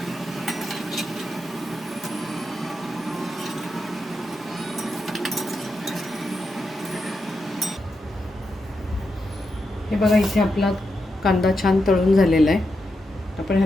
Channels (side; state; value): both; normal; correlation 0.86